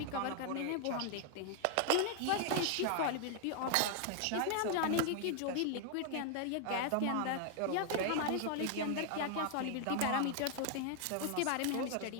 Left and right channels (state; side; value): different; both; correlation 0.00